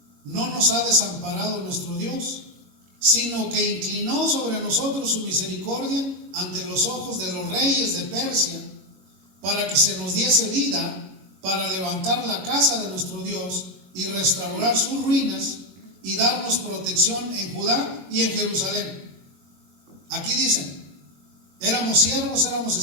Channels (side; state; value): left; late; 21 ms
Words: no nos ha desamparado nuestro Dios, sino que inclinó sobre nosotros su misericordia ante los ojos de los reyes de Persia, para que se nos diese vida, para levantar la casa de nuestro Dios y restaurar sus ruinas y darnos protección en Judá y en Jerusalén. Aquí dicen, éramos siervos, éramos